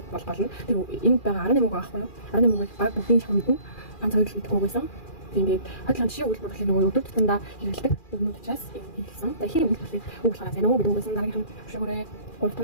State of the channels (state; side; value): late; right; 2.4 ms